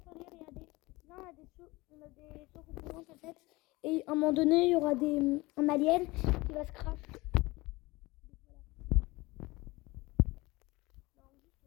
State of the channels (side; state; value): right; quieter; 21.9 dB